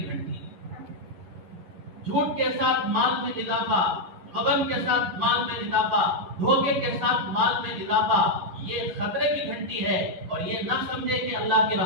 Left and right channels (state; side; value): late; left; 11 ms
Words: گھنٹی ہے. جھوٹ کے ساتھ مال میں اضافہ، غبن کے ساتھ مال میں اضافہ، دھوکے کے ساتھ مال میں اضافہ، یہ خطرے کی گھنٹی ہے. اور یہ نہ سمجھے کہ اللہ کی